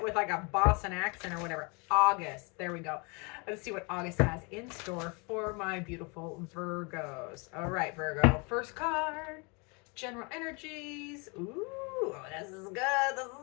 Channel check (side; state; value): right; quieter; 31.4 dB